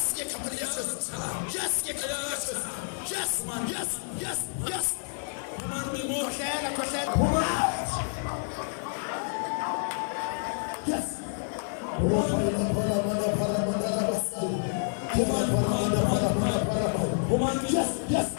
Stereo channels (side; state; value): right; silent; digital silence